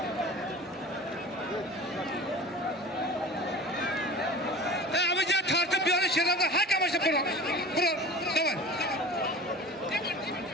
Abi ya tartıp bir yana şeylerden hakikaten başta bura. Tamam.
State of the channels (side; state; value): both; normal; correlation 0.38